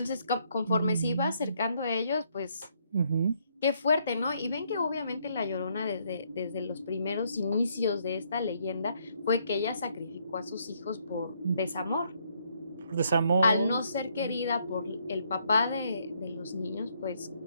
conforme se iba Mm, acercando a ellos, pues ujú, qué fuerte, ¿no? Y ven que obviamente la Llorona desde los primeros inicios de esta leyenda fue que ella sacrificó a sus hijos por desamor. Al desamor. no ser querida por el papá de los niños, pues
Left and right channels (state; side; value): inverted; both; correlation -0.71